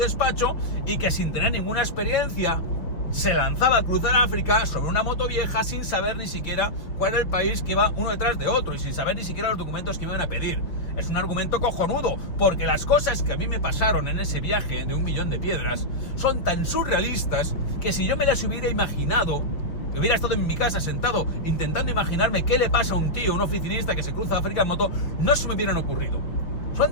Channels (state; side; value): late; right; 5.7 ms